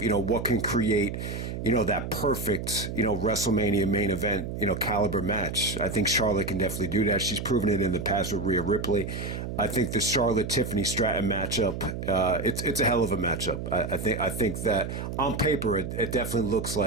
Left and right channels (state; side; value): noise; right; hum, 6 dB below the sound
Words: can create that perfect, WrestleMania main event, caliber match. I think Charlotte can definitely do that. She's proven it in the past with Rhea Ripley. I think the Charlotte-Tiffany Stratton matchup, it's a hell of a matchup. I think that on paper, it definitely looks